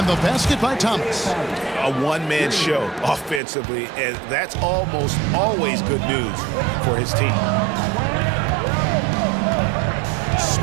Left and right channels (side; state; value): left; drops out; at 3.4 s